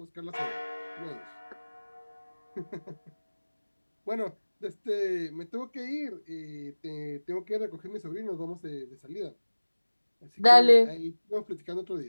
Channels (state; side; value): inverted; both; correlation -1.00